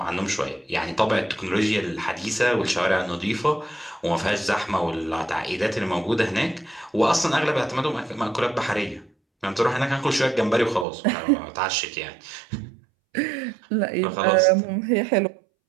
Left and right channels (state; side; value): drops out; left; at 10.9 s